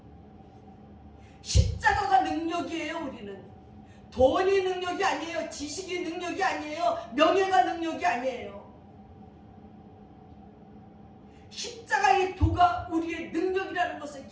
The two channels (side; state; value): both; identical; correlation 1.00